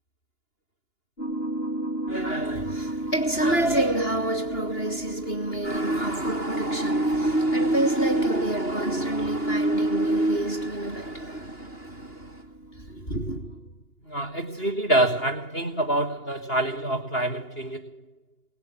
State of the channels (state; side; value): late; right; 2.9 ms